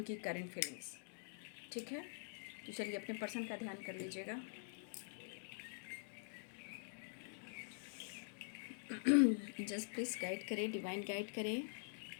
करेंट फीलिंग्स। ठीक है, तो चलिए अपने पर्सन का ध्यान कर लीजिएगा। जस्ट प्लीज़ गाइड करें, डिवाइन गाइड करें,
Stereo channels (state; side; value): silent; right; digital silence